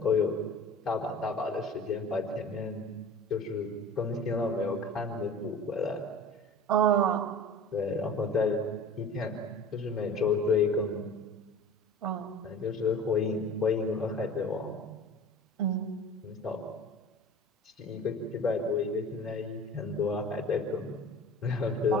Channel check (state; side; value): normal; both; correlation 0.40